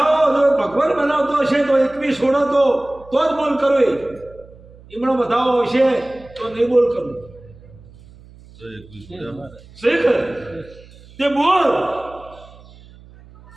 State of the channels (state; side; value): noise; right; hum, 23 dB below the sound